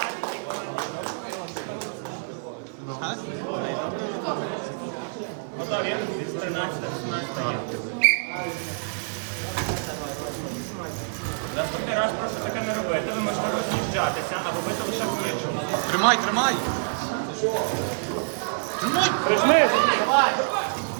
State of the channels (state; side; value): silent; left; digital silence